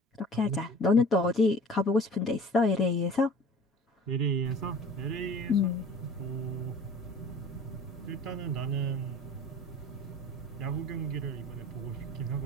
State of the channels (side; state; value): both; normal; correlation 0.44